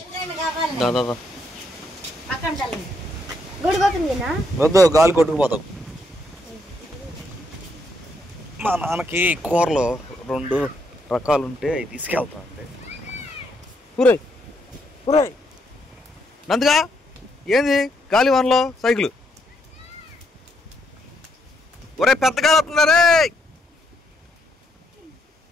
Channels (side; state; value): both; normal; correlation 0.75